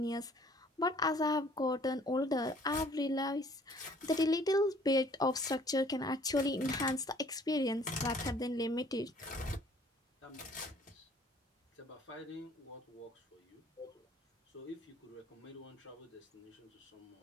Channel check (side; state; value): both; normal; correlation 0.57